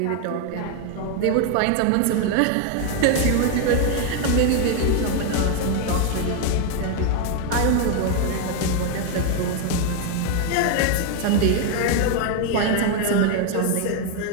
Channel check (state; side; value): different; both; correlation 0.01